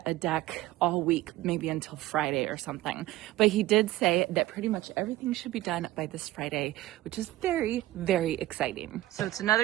a deck all week, maybe until Friday or something. But he did say that pretty much everything should be done by this Friday, which is very, very exciting. So it's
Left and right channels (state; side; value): quieter; left; 16.4 dB